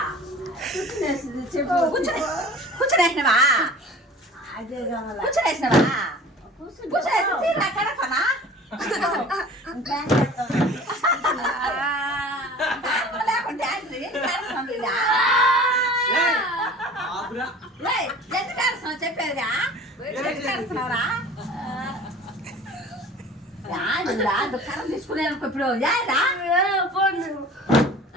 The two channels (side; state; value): both; normal; correlation 0.43